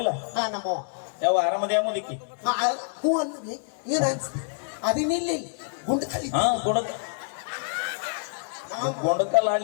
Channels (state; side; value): silent; right; digital silence